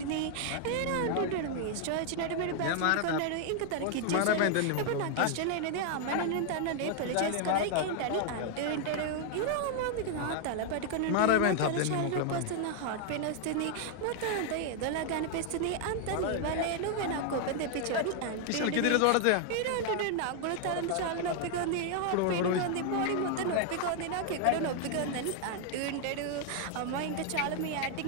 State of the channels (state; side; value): different; both; correlation 0.00